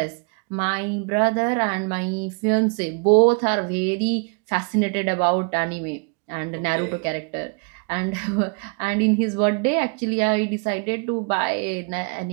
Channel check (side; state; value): left; quieter; 35.6 dB